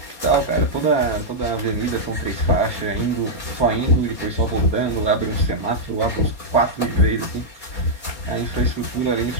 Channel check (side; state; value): right; late; 4.3 ms